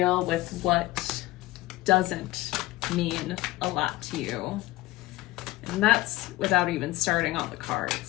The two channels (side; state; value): right; quieter; 18.0 dB